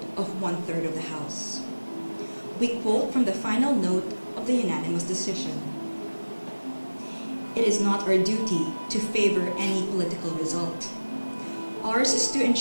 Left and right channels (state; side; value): inverted; both; correlation -1.00